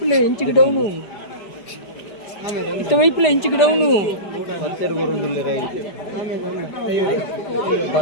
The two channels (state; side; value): late; right; 5.0 ms